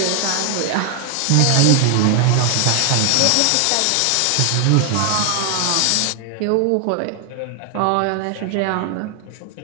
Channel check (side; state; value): both; different; correlation 0.00